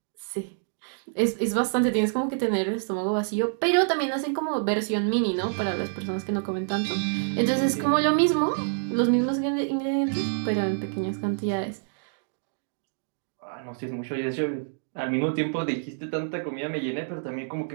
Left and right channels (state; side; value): silent; left; digital silence